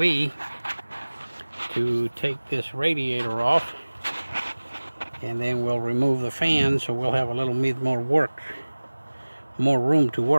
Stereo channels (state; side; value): inverted; both; correlation -1.00